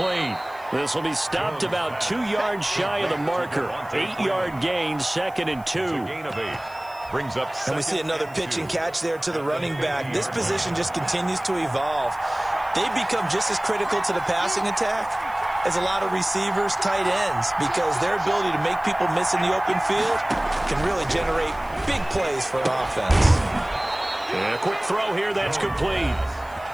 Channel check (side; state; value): left; noise; hiss, 26 dB below the sound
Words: This will be stopped about 2 yards shy of the marker. 8-yard gain, 2nd and 2. Gain of 8. Brings up and we see another pitch and catch there to the running back. This position just continues to evolve. They become just as critical to the passing attack as a lot of receivers, tight ends, because their ability to make people miss in the open field can really generate big plays for an offense. Yeah, quick throw here, that's complete.